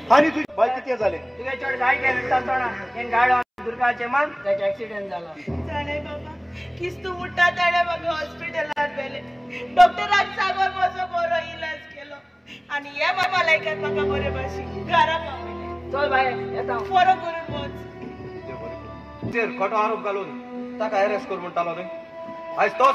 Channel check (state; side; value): identical; both; correlation 1.00